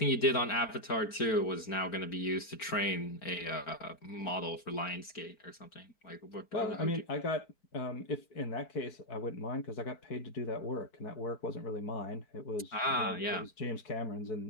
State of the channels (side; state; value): right; late; 4.4 ms